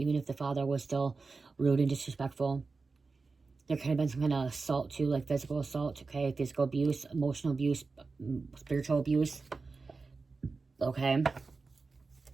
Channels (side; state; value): left; quieter; 4.1 dB